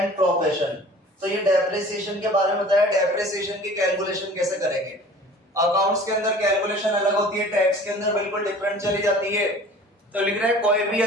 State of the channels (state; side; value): normal; both; correlation 0.45